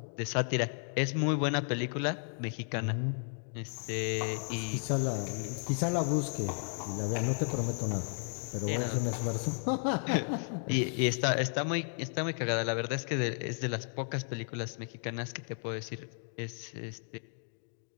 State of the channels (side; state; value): right; silent; 55 dB below the other